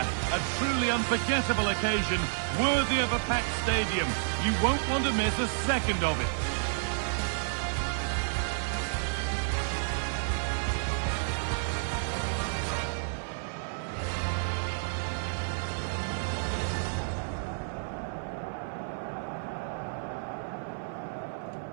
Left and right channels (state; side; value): silent; left; digital silence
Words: A truly unforgettable occasion, worthy of a packed stadium. You won't want to miss a second of it.